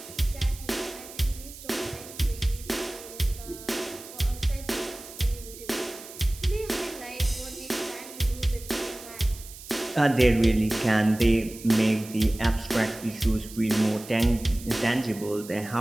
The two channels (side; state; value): right; noise; hiss, 16 dB below the sound